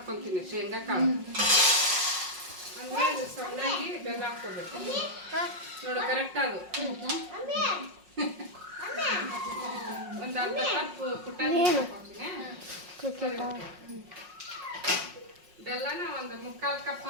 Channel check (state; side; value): late; left; 5.5 ms